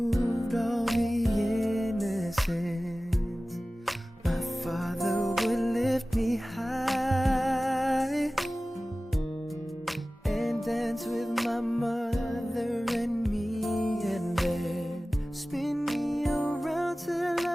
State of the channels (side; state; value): both; normal; correlation 0.97